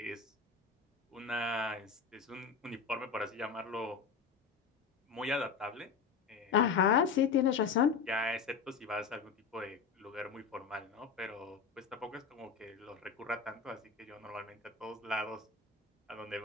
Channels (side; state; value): right; quieter; 5.6 dB